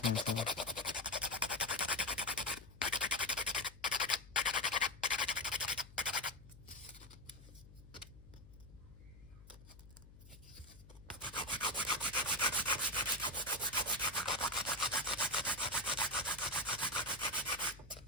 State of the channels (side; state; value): left; noise; hum, 19 dB below the sound